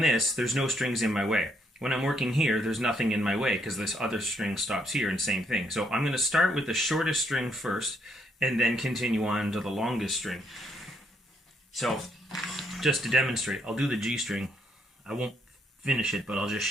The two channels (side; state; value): both; normal; correlation 0.73